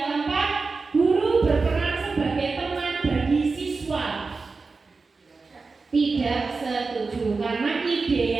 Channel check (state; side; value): quieter; left; 4.2 dB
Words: keempat, guru berperan sebagai teman bagi siswa. Tidak setuju, karena